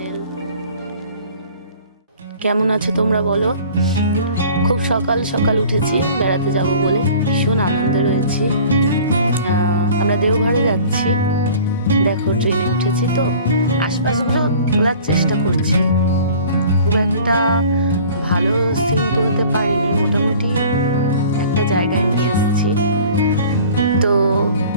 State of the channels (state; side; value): inverted; both; correlation -0.46